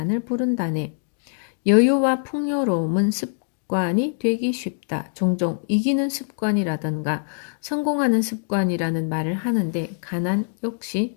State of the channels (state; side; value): silent; right; 63 dB below the other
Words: 부른다네. 여유와 풍요로움은 습관이 되기 쉽다. 종종 이기는 습관이라던가 성공하는 습관이라는 말을 하는데 가난 역시